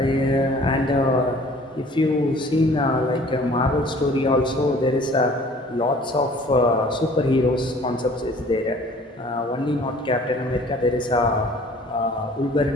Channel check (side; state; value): both; normal; correlation 0.51